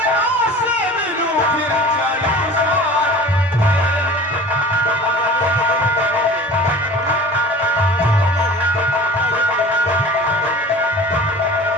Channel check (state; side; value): normal; both; correlation 0.41